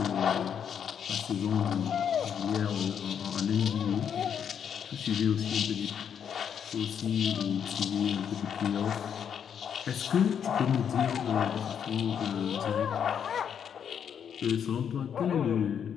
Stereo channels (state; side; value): quieter; right; 8.1 dB